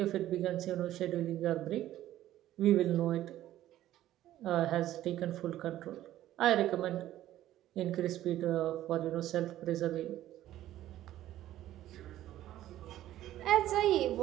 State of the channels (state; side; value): quieter; left; 13.5 dB